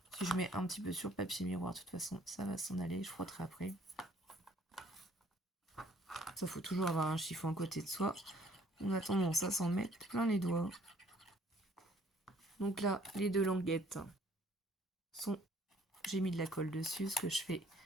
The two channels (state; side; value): normal; both; correlation 0.60